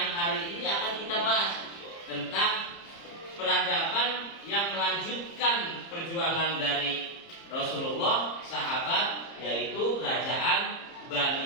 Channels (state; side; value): late; right; 30 ms